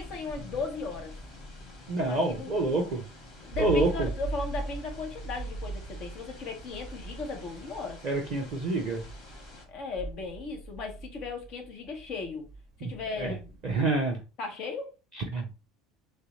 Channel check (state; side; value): normal; both; correlation 0.48